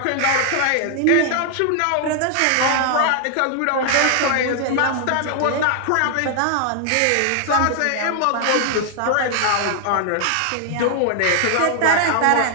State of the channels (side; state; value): both; different; correlation 0.00